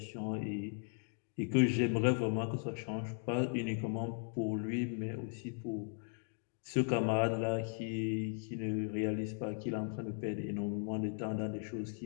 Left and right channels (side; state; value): right; silent; 53 dB below the other